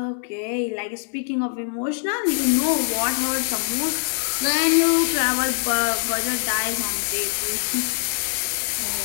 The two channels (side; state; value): right; silent; 63 dB below the other